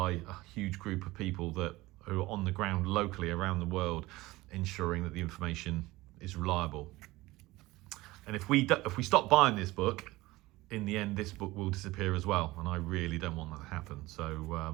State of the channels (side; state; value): left; quieter; 19.5 dB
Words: a huge group of people who are on the ground locally around the world, ensuring that the information is reliable. And if we stop buying this book, in the end, this book will disappear as well, and I really don't want that to happen.